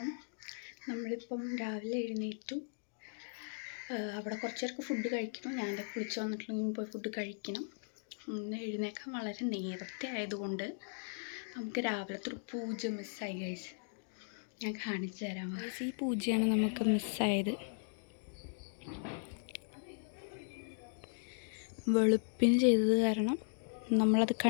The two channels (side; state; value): right; silent; digital silence